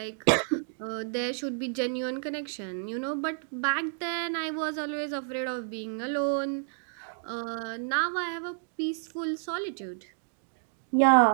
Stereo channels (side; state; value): left; silent; digital silence